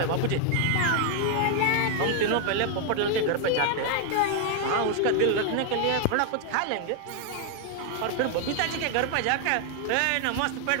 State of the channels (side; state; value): both; different; correlation 0.00